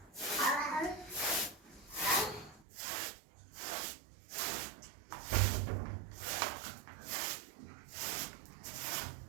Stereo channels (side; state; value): left; drops out; at 2.7 s